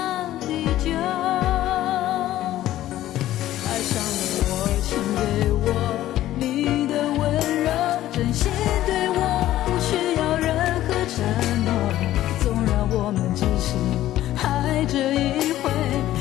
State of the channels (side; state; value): right; quieter; 13.9 dB